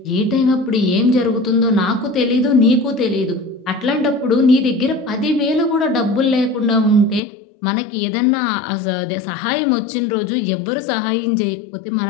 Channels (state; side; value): drops out; right; at 7.2 s